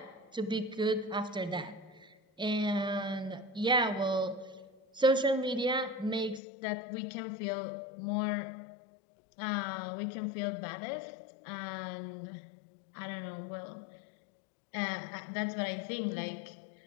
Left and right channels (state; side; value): drops out; right; at 6.4 s